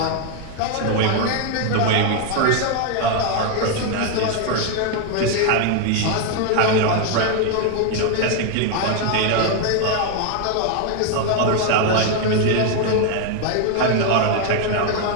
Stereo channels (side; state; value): both; different; correlation 0.01